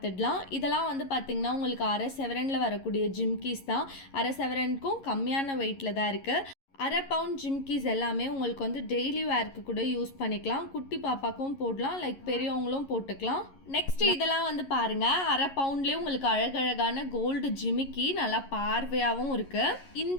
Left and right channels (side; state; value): right; late; 11 ms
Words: இதெல்லாம் வந்து பார்த்திங்கன்னா உங்களுக்கு அரை செவரனில் வரக்கூடிய ஜிம்கீஸ் தான். அரை செவரனுக்கும் கம்மியான வெயிட்டில் தான் இருக்குது. அரை பவுண்ட் ஜிம்கீஸ் எல்லாமே உங்களுக்கு வந்து டெய்லி வேர்க்கு கூட யூஸ் பண்ணிக்கலாம். குட்டி பாப்பாக்கும் போடலாம், லைக் பெரியவங்களும் போட்டுக்கலாம். நெக்ஸ்ட் இதெல்லாம் வந்து பாருங்கள், அரை பவுண்ட்லேயே உங்களுக்கு அழகழகான கோல்டு ஜிமிக்கி நல்லா பார்வையாகவும் இருக்குது.